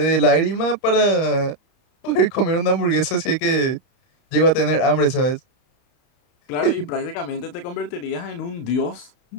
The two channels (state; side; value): late; right; 32 ms